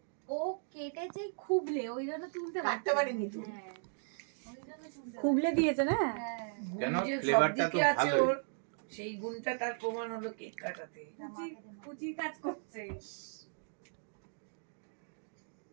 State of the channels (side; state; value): left; silent; digital silence